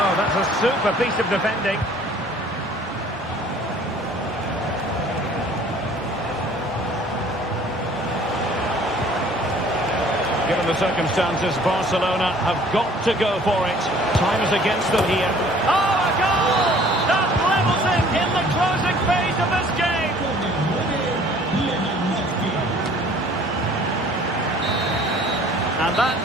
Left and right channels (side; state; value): both; normal; correlation 0.53